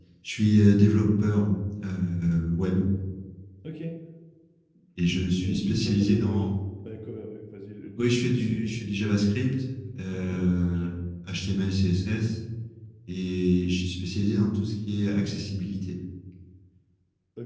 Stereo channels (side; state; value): both; identical; correlation 1.00